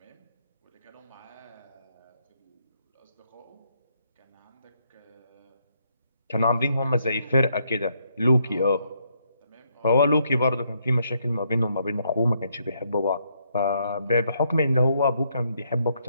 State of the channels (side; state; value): both; inverted; correlation -0.75